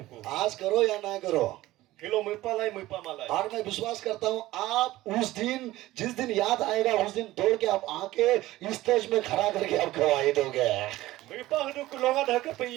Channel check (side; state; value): left; quieter; 16.8 dB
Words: ko. आज करो या ना करो, Hilo mo palay mo pamalay. और मैं विश्वास करता हूँ आप उस दिन, जिस दिन याद आएगा उस दिन दौड़ के आप आके इस स्टेज में खड़ा करके आप गवाही दोगे। Mo pa hadu ko longa da ka